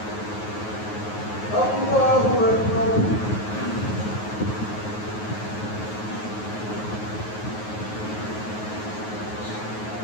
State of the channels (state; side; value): late; right; 9.4 ms